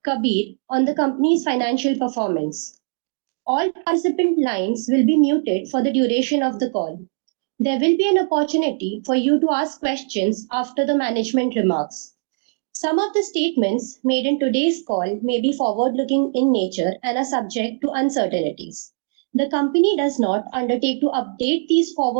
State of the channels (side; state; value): left; silent; digital silence